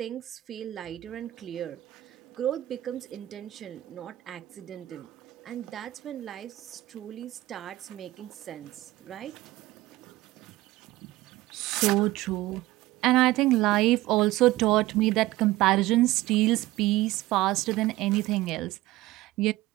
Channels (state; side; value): quieter; left; 17.2 dB